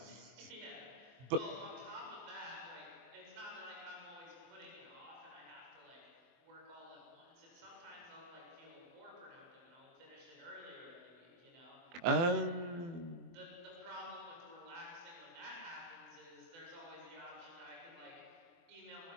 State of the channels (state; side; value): late; left; 24 ms